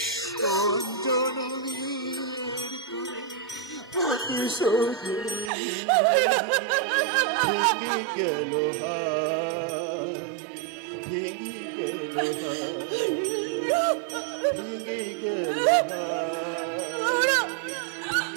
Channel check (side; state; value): left; drops out; at 5.5 s